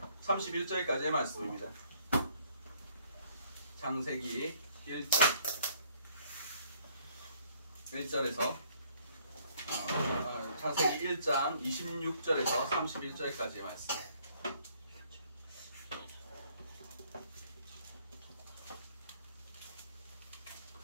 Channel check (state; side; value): inverted; both; correlation -0.63